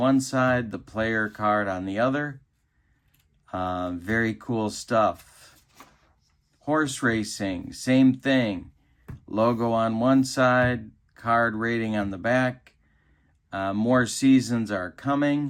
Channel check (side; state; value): both; identical; correlation 1.00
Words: side, the player card on the other. Very cool stuff. Horse racing, same thing. Logo on one side, card rating on the back. More seasons are